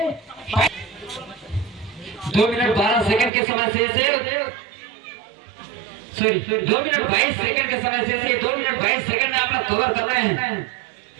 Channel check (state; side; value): drops out; left; at 3.3 s